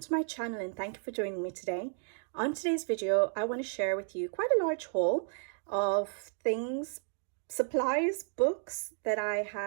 my channel and thank you for joining me today. On today's video, I want to share with you quite a large haul of things, supplies, books that I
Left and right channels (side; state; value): left; silent; 56 dB below the other